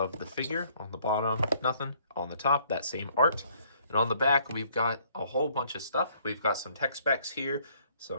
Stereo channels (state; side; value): inverted; both; correlation -0.63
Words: the figure. On the bottom, nothing. On the top, that same art. And on the back, we've got a whole bunch of stuff. We've got some tech specs here,